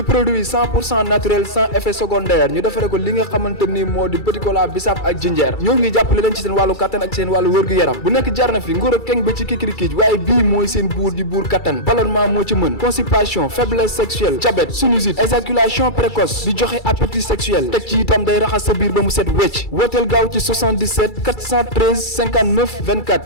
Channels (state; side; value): late; right; 2.3 ms